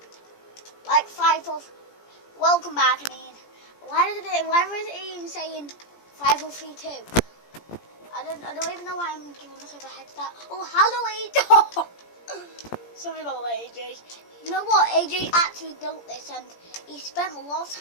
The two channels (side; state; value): right; late; 17 ms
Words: Like 5 of. Welcome back, I mean. Why was it even saying 5032? I don't even know why I'm giving myself a head start. Oh, hello, AJ. Sorry about that, AJ. You know what? AJ actually built this, and he spent a lot of